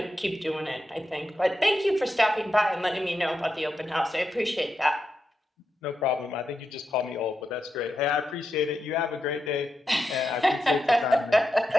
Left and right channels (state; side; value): normal; both; correlation 0.87